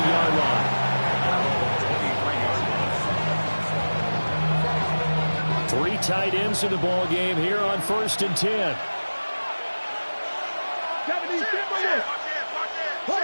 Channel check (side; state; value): both; inverted; correlation -1.00